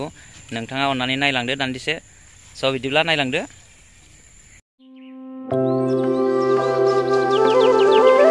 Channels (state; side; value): identical; both; correlation 1.00